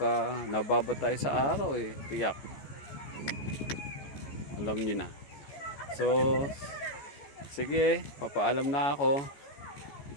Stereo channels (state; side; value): late; right; 14 ms